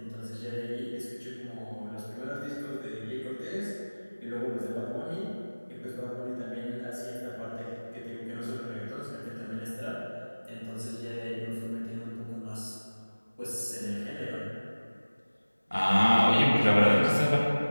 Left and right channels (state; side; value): inverted; both; correlation -1.00